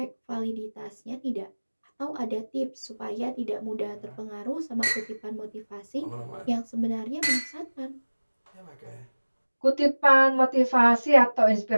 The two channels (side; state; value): both; inverted; correlation -1.00